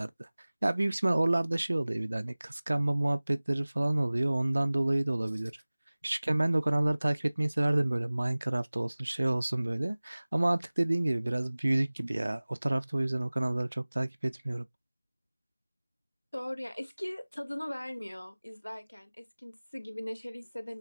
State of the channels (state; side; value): inverted; both; correlation -1.00